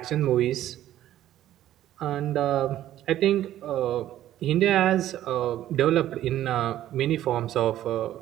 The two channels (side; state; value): left; quieter; 12.8 dB